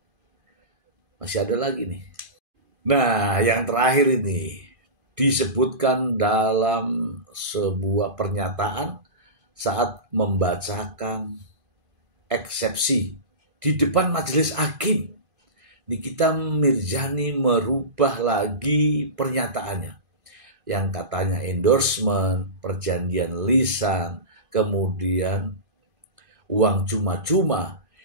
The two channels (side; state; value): left; late; 2.5 ms